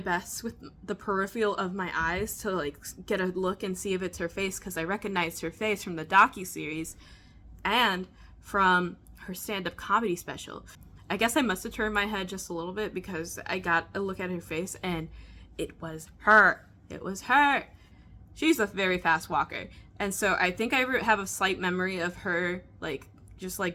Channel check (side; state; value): both; identical; correlation 1.00